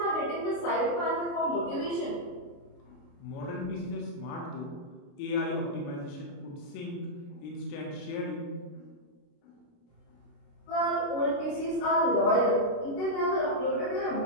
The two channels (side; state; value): right; late; 29 ms